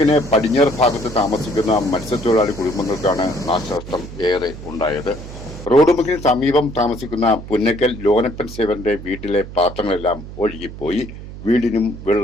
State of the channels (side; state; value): right; noise; hum, 12 dB below the sound